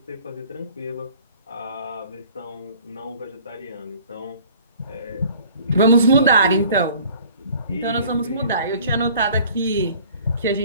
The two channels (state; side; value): inverted; both; correlation -0.51